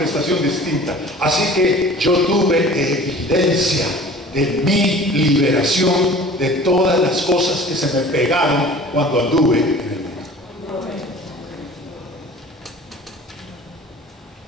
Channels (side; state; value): both; normal; correlation 0.45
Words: distinta. Así que yo tuve evidencia de mi liberación de todas las cosas que se me pegaron cuando anduve en el mundo.